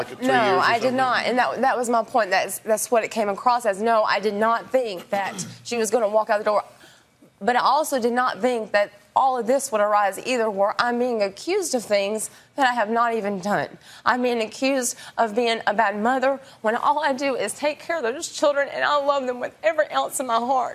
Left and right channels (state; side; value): identical; both; correlation 1.00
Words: 3 years? No, I did not, and that was my point. That's what it came across as. No, I did not think that she was going to walk out the door. But I also did not think that all of this would arise either, where I'm being accused of things that I have not even done. I'm being accused of being a bad mother when all I do is take care of those children, and I love them with every ounce of my